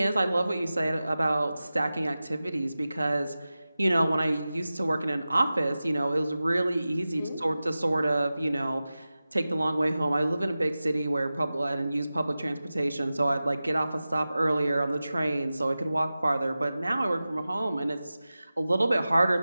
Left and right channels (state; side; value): inverted; both; correlation -0.95